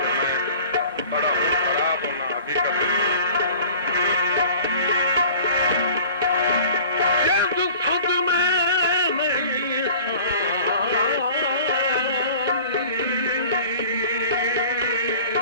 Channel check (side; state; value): both; inverted; correlation -0.45